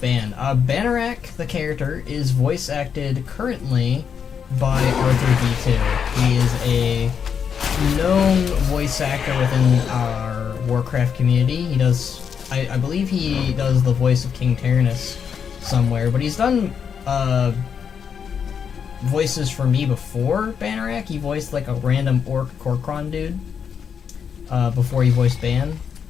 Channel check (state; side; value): quieter; right; 7.2 dB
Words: Banarak, the character, is voice acted currently by Arthur D2. He is a known voice actor within our Warcraft community. He does, I believe he does the voice of King Tyrannus somewhere, but he's done voices for me before Banarak. He voiced like a random orc Korkron dude before he voiced Ban.